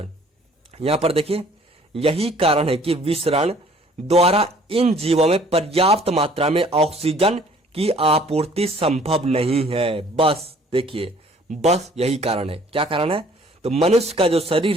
पर देखिए यही कारण है कि विसरण द्वारा इन जीवों में पर्याप्त मात्रा में ऑक्सीजन की आपूर्ति संभव नहीं है। बस देखिए, बस यही कारण है। क्या कारण है? तो मनुष्य का जो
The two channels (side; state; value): both; normal; correlation 0.56